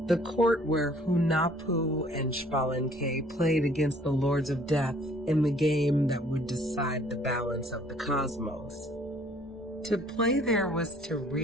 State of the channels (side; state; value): both; normal; correlation 0.58